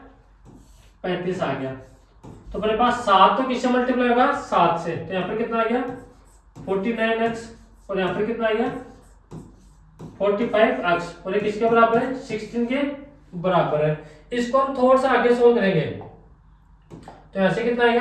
35 आ गया। तो अपने पास 7 तो किससे मल्टीप्लाई होगा, 7 से। तो यहाँ पर कितना आ गया, 49x, और यहाँ पर कितना आ गया, 45x, और ये किसके बराबर है, 16 के बराबर है। इसको हम थोड़ा सा आगे सोल्व करेंगे तो यहाँ से कितना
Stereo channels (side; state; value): both; identical; correlation 1.00